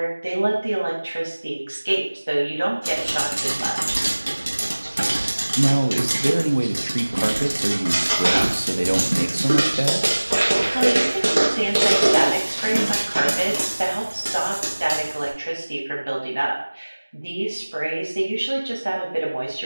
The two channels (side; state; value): both; inverted; correlation -1.00